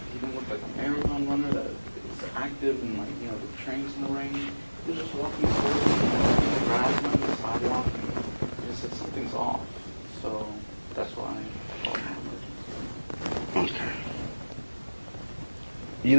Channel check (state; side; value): inverted; both; correlation -1.00